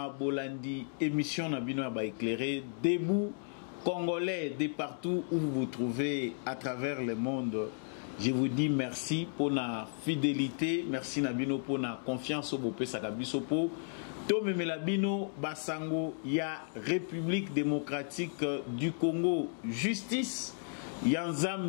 Bolandi, émission Nabino Aba éclairé, debout congolais de partout où vous vous trouvez à travers le monde. Je vous dis merci pour la fidélité, merci Nabino pour la confiance au Bopé Sakabisopo. Tome Melabino Basango, ya République démocratique du Congo, justice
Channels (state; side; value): silent; right; digital silence